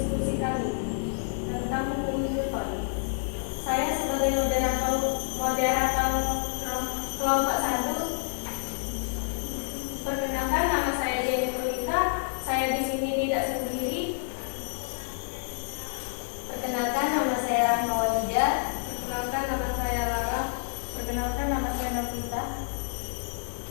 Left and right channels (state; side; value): silent; right; digital silence